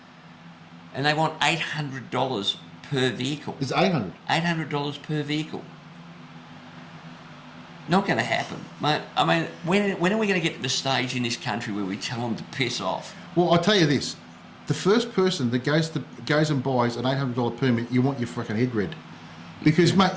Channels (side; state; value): both; identical; correlation 1.00